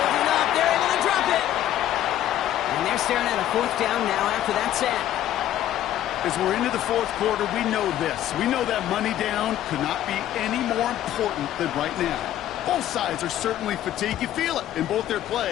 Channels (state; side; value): quieter; right; 12.3 dB